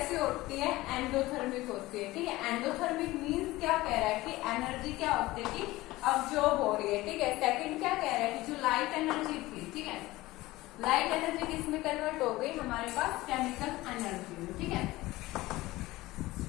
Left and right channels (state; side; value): quieter; right; 18.7 dB